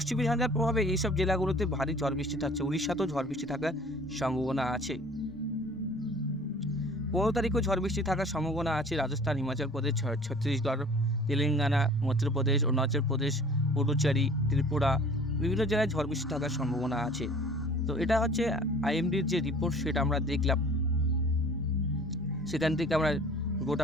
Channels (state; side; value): normal; both; correlation 0.48